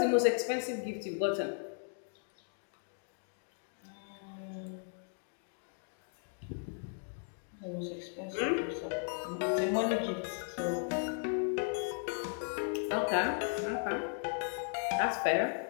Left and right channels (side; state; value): right; silent; 54 dB below the other